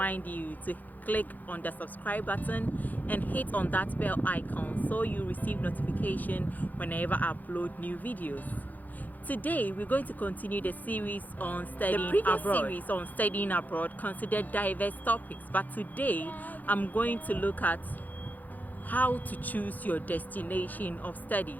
you to click on the subscribe button and hit on that bell icon so you receive notification whenever I upload new videos. Today we're going to continue the series on studying abroad. Series on studying abroad considered diverse topics, but today I'm going to look at how to choose your destination of study.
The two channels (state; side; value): late; right; 0.083 ms